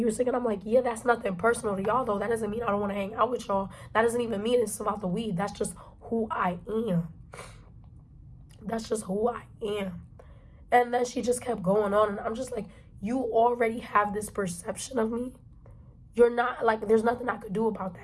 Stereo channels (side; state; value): both; identical; correlation 1.00